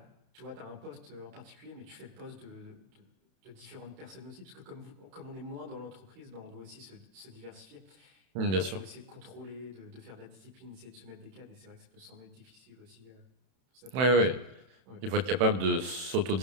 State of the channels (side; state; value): left; late; 31 ms